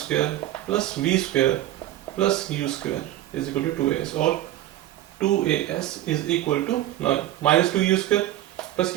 plus v square plus u square is equal to 2as, or 2as is equal to, now minus 2u square plus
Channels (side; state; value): left; quieter; 14.0 dB